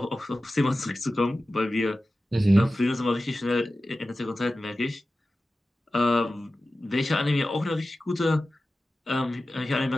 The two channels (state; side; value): normal; both; correlation 0.94